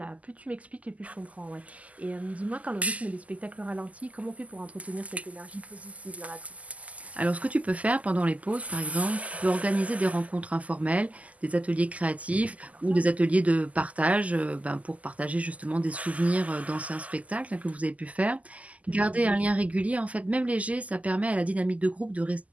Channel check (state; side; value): late; left; 0.072 ms